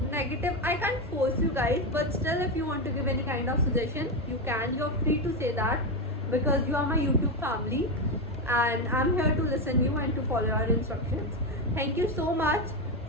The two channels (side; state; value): both; normal; correlation 0.10